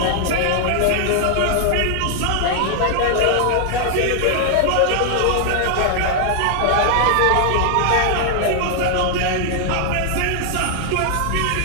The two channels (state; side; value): different; both; correlation 0.00